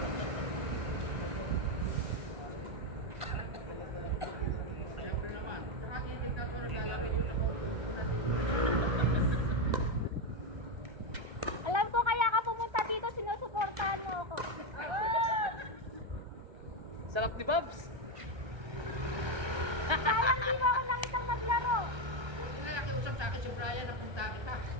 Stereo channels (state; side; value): late; left; 1.3 ms